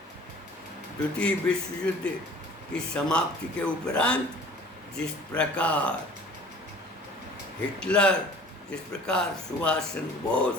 द्वितीय विश्व युद्ध की समाप्ति के उपरांत जिस प्रकार हिटलर, जिस प्रकार सुभाष चंद्र बोस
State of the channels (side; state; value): both; normal; correlation 0.47